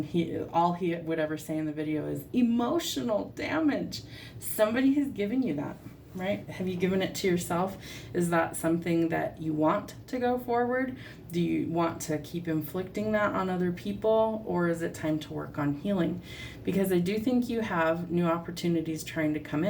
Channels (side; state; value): both; identical; correlation 1.00